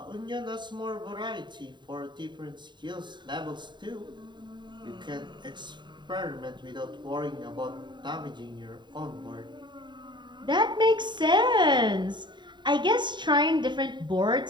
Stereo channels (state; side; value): late; left; 0.22 ms